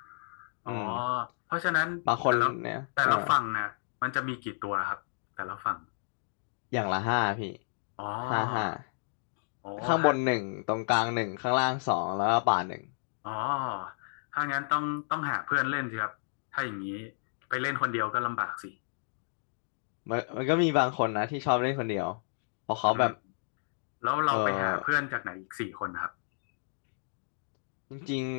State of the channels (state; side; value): silent; right; digital silence